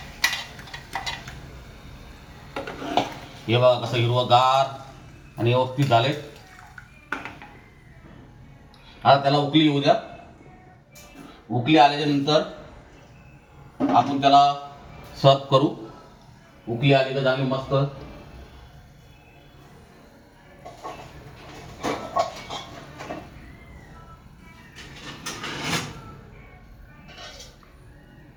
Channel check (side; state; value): both; identical; correlation 1.00